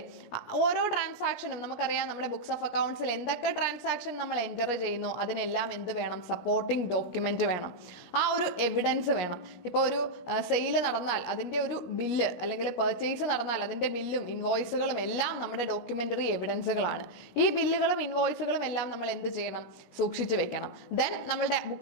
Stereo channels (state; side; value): late; right; 17 ms